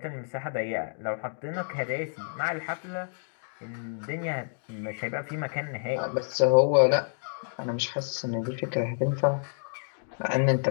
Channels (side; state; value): right; silent; digital silence